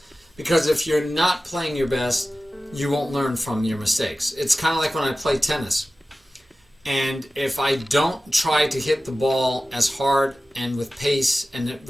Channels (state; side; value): normal; both; correlation 0.96